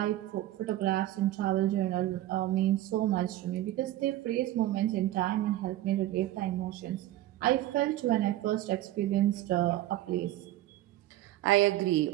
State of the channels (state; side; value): quieter; left; 14.8 dB